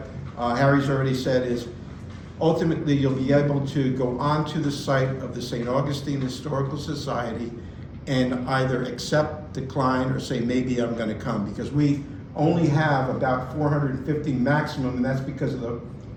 Harry's already said is, ultimately you'll be able to go onto the site of the St. Augustine Historical Society and either accept, decline, or say, maybe I'm going to come, because we only have about 450 maximum, and that's because of the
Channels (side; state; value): both; identical; correlation 1.00